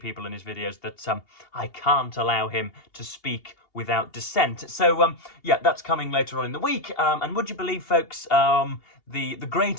in his videos that I can't allow him to speak without dissent. So yeah, that's coming later on in the week. And would you believe, folks, the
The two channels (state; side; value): late; right; 2.8 ms